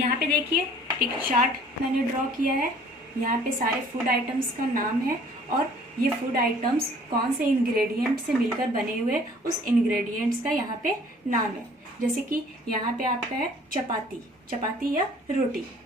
पे देखिए एक चार्ट मैंने ड्रॉ किया है। यहाँ पे सारे फूड आइटम्स का नाम है और ये फूड आइटम्स कौन से इंग्रेडिएंट से मिलकर बने हुए, उस इंग्रेडिएंट्स का यहाँ पे नाम है। जैसे कि यहाँ पे आपका है चपाती या रोटी।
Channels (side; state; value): both; normal; correlation 0.54